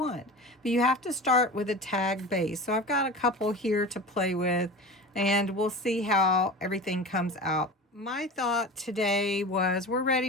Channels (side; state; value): both; normal; correlation 0.32